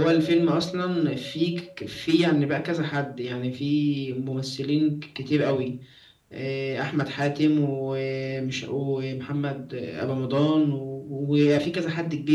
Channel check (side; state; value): both; identical; correlation 1.00